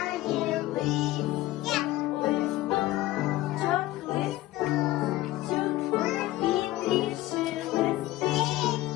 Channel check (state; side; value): quieter; right; 16.5 dB